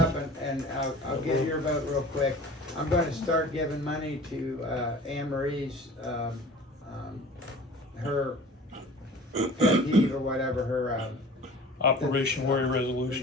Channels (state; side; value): normal; both; correlation 0.43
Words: and I'll get your vote real quick. I'm gonna start giving money to, Anne Marie's, her pet peeve or whatever, her, Operation Warrior Resolution.